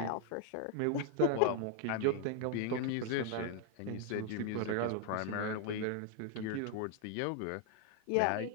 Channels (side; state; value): both; different; correlation 0.00